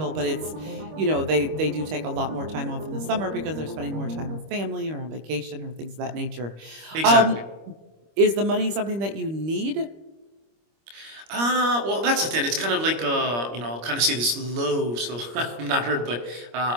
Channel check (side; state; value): left; late; 25 ms